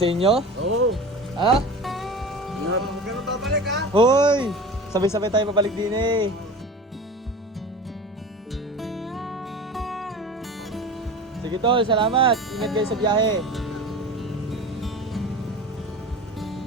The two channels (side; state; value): both; normal; correlation 0.34